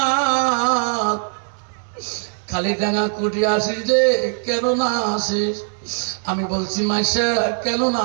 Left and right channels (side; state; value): left; silent; 65 dB below the other